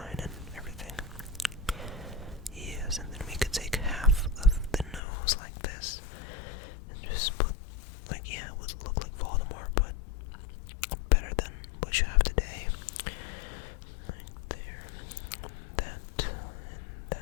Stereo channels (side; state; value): right; drops out; at 5.0 s